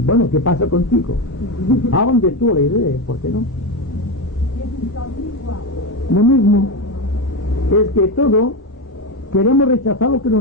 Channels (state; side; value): normal; both; correlation 0.14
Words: Bueno, ¿qué pasa contigo? Hablan de tú la idea, ¿por qué no? Lo mismo es que todo queremos rechazar lo que no